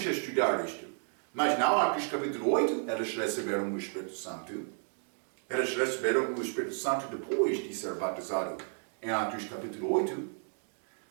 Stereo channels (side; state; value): left; silent; 56 dB below the other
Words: estudar isto. Mas não, Atos capítulo 8, eles receberam o Espírito Santo. Eles receberam o Espírito Santo depois de ser batizado em Atos capítulo 8.